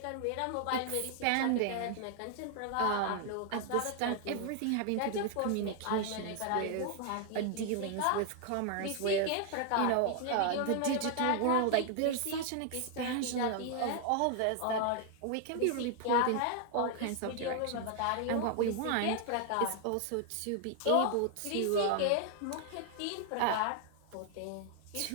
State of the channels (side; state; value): both; different; correlation 0.00